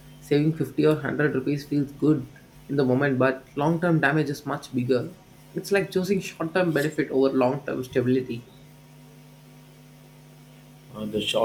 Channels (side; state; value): both; identical; correlation 1.00